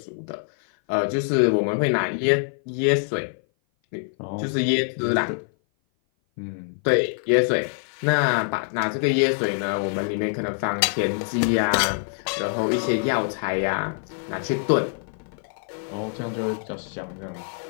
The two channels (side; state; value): right; silent; 57 dB below the other